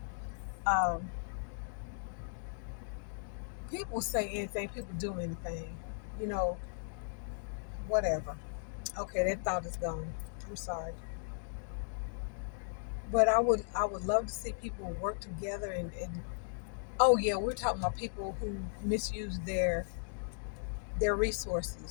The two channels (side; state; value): right; silent; digital silence